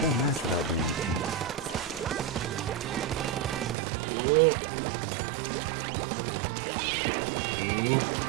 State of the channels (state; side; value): drops out; left; at 3.8 s